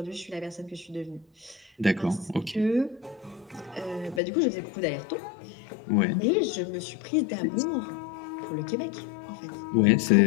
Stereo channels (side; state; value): right; drops out; at 4.2 s